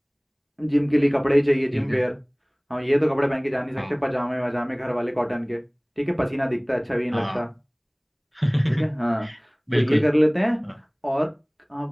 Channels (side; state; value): both; identical; correlation 1.00